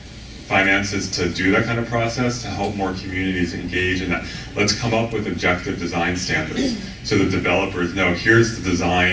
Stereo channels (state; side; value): identical; both; correlation 1.00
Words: finances to do that kind of process, to help more communities engage in that. Let's come up with objective design standards so that developers know, here's the